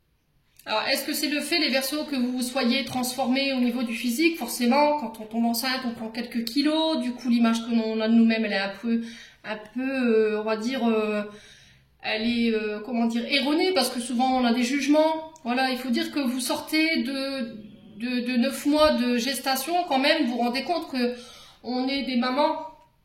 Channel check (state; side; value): identical; both; correlation 1.00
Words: Alors, est-ce que c'est le fait, les Verseaux, que vous soyez transformés au niveau du physique? Forcément, quand on tombe enceinte, on prend quelques kilos. Du coup, l'image que l'on a de nous-mêmes, elle est un peu, on va dire, elle est, comment dire, erronée, parce que souvent, on a des jugements. Voilà, il faut dire que vous sortez de 9 mois de gestation, quand même, vous vous rendez compte que on est des mamans.